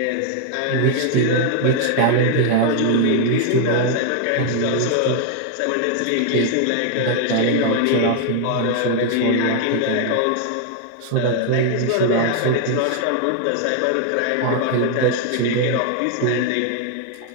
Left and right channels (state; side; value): different; both; correlation 0.00